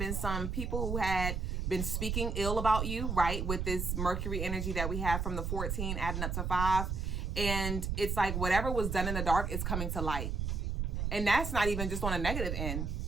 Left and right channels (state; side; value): noise; right; rumble, 1 dB below the sound